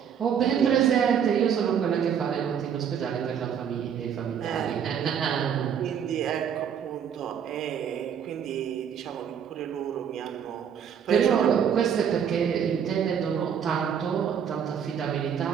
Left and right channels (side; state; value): left; quieter; 8.1 dB